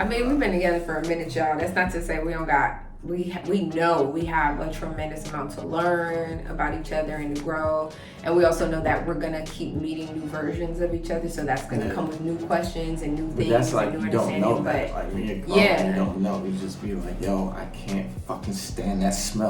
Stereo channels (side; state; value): both; identical; correlation 1.00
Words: mean, we've been together for a minute, y'all. That's not to say we don't got, we know we have a tremendous amount to learn about each other and to grow. And we also know that we're going to keep meeting new versions of each other. So that's going to come with new questions and new things. But that's like, and new you don't know that. But like me and Carl, you don't know. You just be like, yo, I can't fucking stand that